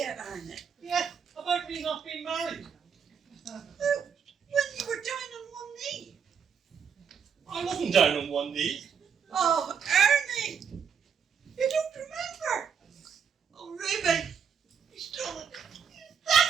Ernie? Yeah, about me not being married. When you were down on one knee? I wasn't down on one knee. Oh, Ernie! You don't remember? Oh, Ruby, he's done it.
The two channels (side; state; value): left; quieter; 6.8 dB